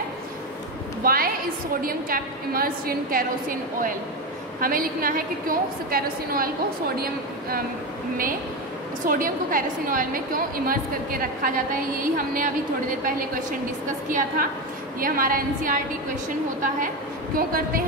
why is sodium kept immersed in kerosene oil. हमें लिखना है कि क्यों कैरोसिन ऑयल को सोडियम को कैरोसिन ऑयल में क्यों इमर्स करके रखा जाता है। यही हमने अभी थोड़ी देर पहले क्वेश्चन डिस्कस किया था। ये हमारा एनसीईआरटी क्वेश्चन होता है। क्यों करते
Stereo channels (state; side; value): normal; both; correlation 0.16